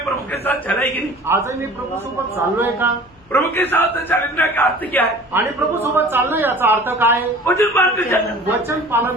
प्रभु के साथ चला ही नहीं. आजही मी प्रभू सोबत चाललोय का? प्रभु के साथ चलने का अर्थ क्या है? आणि प्रभू सोबत चालणं याचा अर्थ काय? वचन मानकर चलना. वचन पालन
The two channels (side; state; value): left; noise; hum, 29 dB below the sound